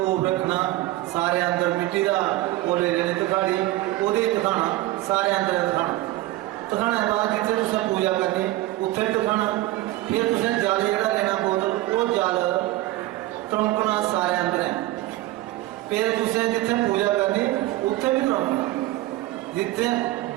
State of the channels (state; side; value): quieter; left; 17.1 dB